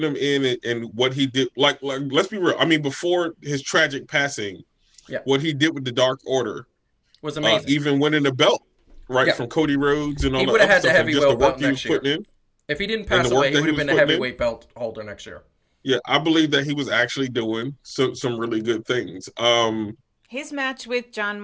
him in and what he did. Like, let's be real. I mean, before his tragic passing, what he did with the Dark Order was amazing. Even winning the belt, from Cody Rhodes and all that. He would have had the heavyweight belt next year. If he didn't pass away, he would have been the heavyweight belt holder next year. Yeah, I believe that he was actually doing some really good things. His match with Jon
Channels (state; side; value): identical; both; correlation 1.00